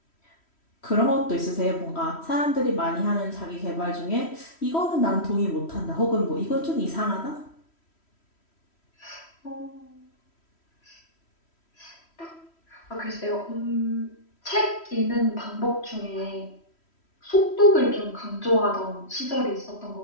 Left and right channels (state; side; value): late; right; 3.1 ms